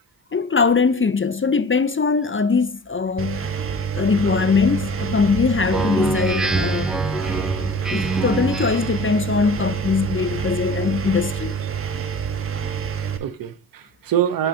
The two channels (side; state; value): both; normal; correlation 0.42